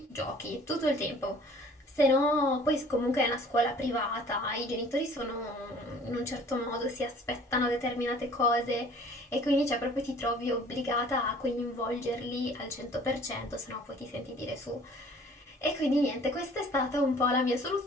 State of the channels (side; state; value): both; normal; correlation 0.52